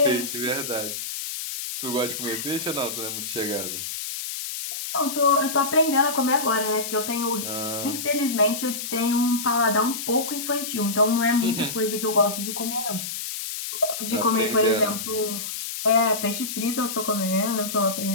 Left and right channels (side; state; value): left; noise; hiss, 6 dB below the sound